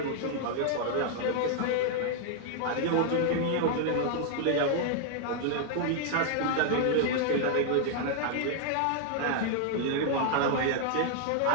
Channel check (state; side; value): different; both; correlation 0.00